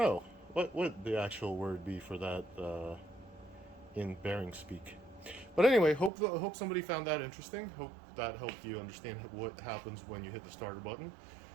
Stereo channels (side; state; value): left; drops out; at 6.1 s